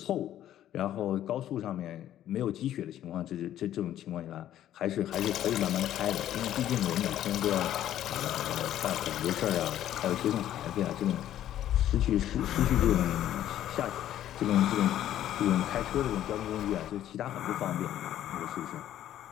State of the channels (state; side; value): quieter; right; 11.9 dB